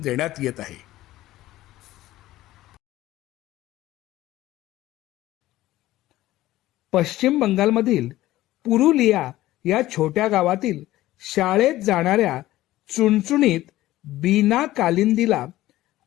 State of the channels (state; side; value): quieter; right; 15.8 dB